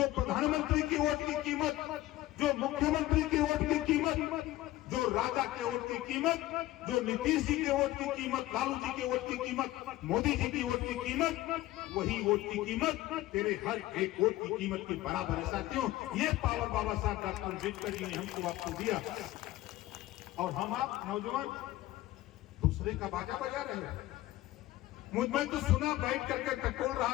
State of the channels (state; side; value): quieter; right; 16.3 dB